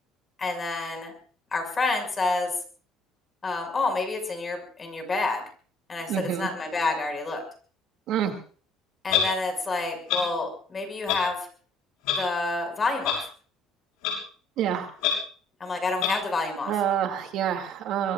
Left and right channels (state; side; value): normal; both; correlation 0.59